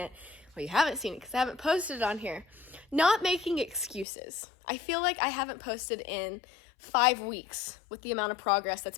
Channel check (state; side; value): drops out; right; at 4.0 s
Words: Well, you haven't seen it because I haven't posted it on here. Not making excuses. I feel like I haven't posted in 5 weeks with the amount of progress